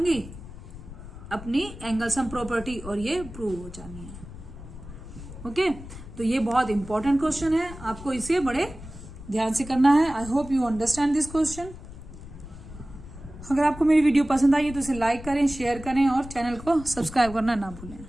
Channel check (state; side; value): noise; left; rumble, 14 dB below the sound